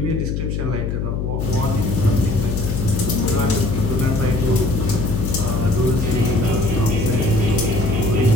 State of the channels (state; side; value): noise; left; hum, 2 dB below the sound